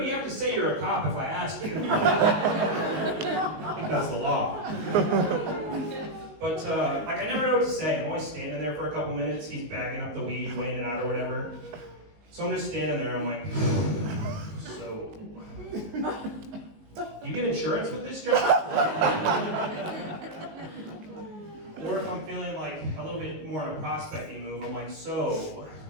have to say you're a cop if I ask you. I think that's the law. But, I never know what to say. I'm always standing there for a couple minutes. He's bagging up the weed, weighing it out or whatever. So I'm just standing there. I'm like, so, you get insurance with this job? Or if I'm feeling like a little bit more in a prospecting move, I'm like, so,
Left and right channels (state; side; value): late; left; 19 ms